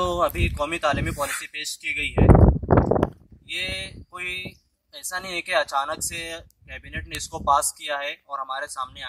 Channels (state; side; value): identical; both; correlation 1.00